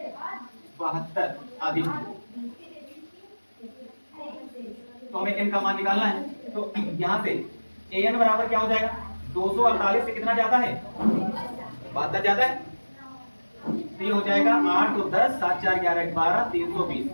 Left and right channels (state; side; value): inverted; both; correlation -1.00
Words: 72 आदि। तो हमें n का मान निकालना है। तो यहाँ से an बराबर क्या हो जाएगा? 248 से कितना जाता है? 72 जाता है। तो ये हो जाएगा 8 तो 10 7 4 11 12 320।